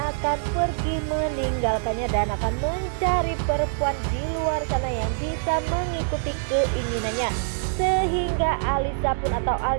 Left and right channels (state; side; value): silent; left; digital silence